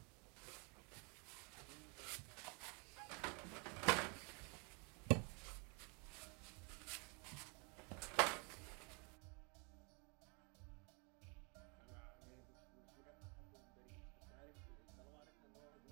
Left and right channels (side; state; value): left; quieter; 33.6 dB